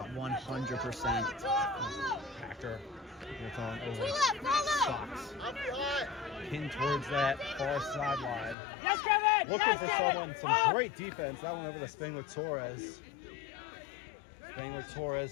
100%. Hacker gets on over Socks. Pinned towards that far sideline. Yes, Kevin! Looking for someone, some great defense. That one over to Spangler-Torres.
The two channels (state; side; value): drops out; right; at 8.6 s